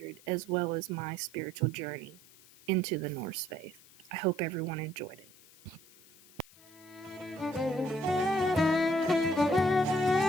as well as my spiritual journey into the Norse faith. I hope everyone enjoyed it.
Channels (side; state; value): left; noise; hiss, 25 dB below the sound